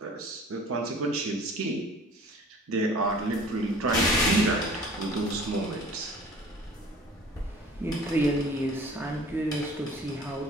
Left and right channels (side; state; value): both; normal; correlation 0.48